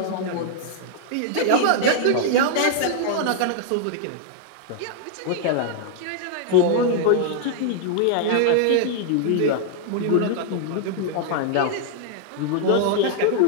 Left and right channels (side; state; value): both; different; correlation -0.01